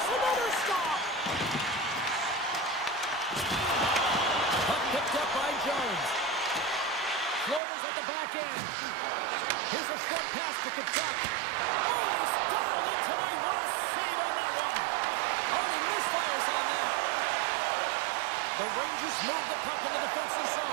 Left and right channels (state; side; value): drops out; left; at 7.6 s